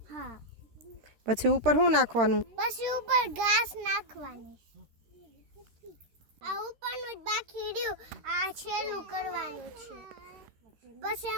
હા. પછી ઉપર શું નાખવાનું? પછી ઉપર ઘાસ નાખવાની. આ ઉપરનું જ બાકી રહ્યું. આ છેલ્લું કરવાનું છે. પછી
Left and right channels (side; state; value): left; late; 13 ms